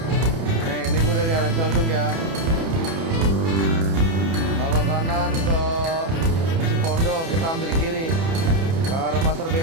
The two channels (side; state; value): left; late; 30 ms